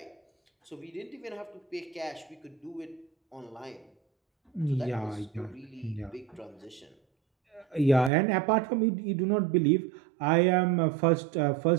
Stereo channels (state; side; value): drops out; left; at 8.1 s